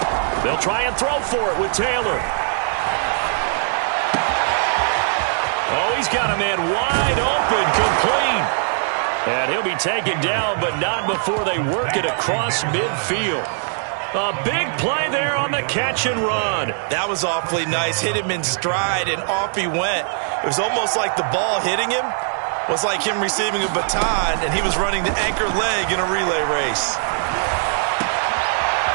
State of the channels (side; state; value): left; silent; digital silence